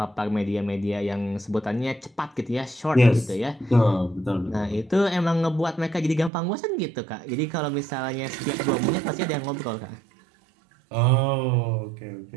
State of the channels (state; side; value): drops out; left; at 6.3 s